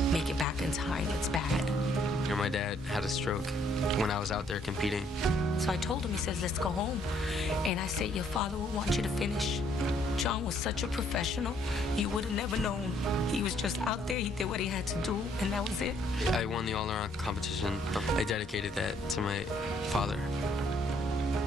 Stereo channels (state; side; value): normal; both; correlation 0.66